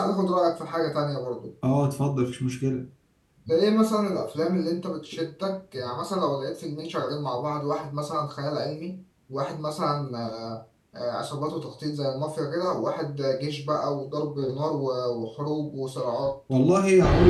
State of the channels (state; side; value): identical; both; correlation 1.00